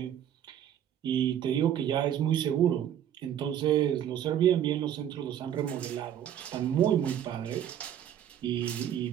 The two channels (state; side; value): quieter; left; 10.2 dB